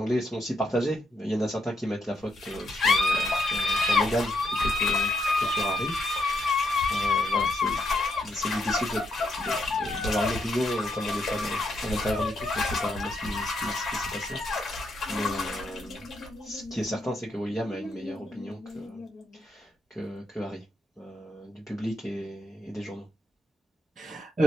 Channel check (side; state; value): both; normal; correlation 0.79